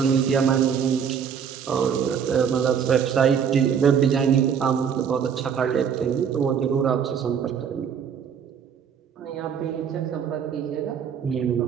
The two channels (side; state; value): left; quieter; 7.5 dB